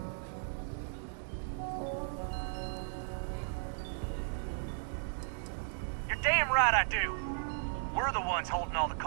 You're damn right I do. We're the ones holding all the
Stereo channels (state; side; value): silent; left; 54 dB below the other